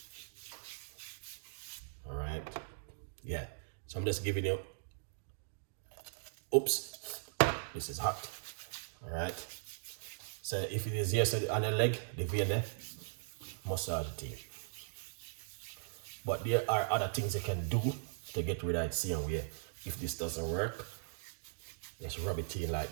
All right. Yeah. So So I'm just giving you, oops, this is hot. All right. So if it is yesterday on the leg, the vein there, massage the team. But there are other things you can do to get rid of it same way. If this doesn't work, just rub it in like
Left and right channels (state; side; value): silent; left; digital silence